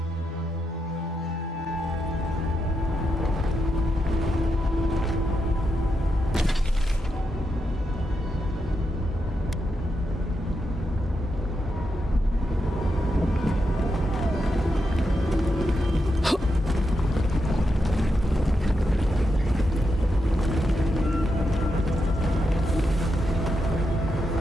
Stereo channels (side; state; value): both; normal; correlation 0.84